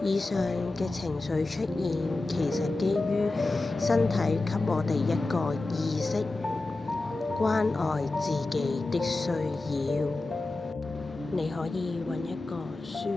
以上嘅情緒出現，其實基於身體給我哋一個意識，關愛自己的需要。你可以揾一個舒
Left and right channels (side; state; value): right; quieter; 3.1 dB